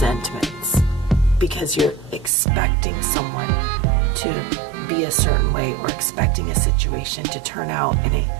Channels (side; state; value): left; drops out; at 2.3 s